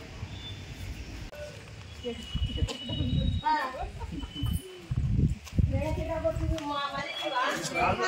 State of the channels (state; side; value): identical; both; correlation 1.00